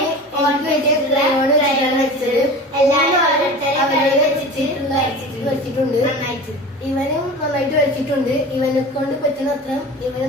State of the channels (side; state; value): both; normal; correlation 0.35